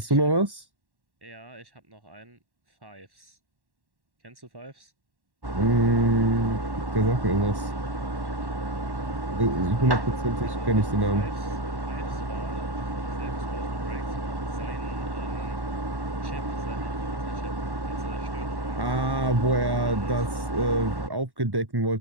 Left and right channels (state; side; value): late; left; 1.1 ms